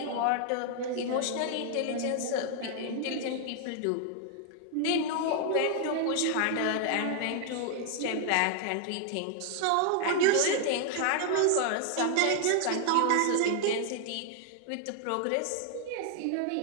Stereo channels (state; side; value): different; both; correlation 0.00